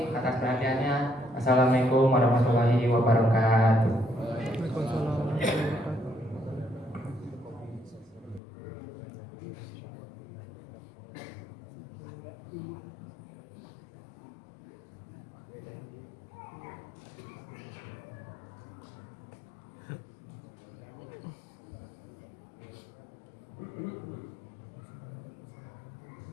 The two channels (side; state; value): right; drops out; at 8.4 s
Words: atas perhatiannya. Assalamualaikum warahmatullahi wabarakatuh.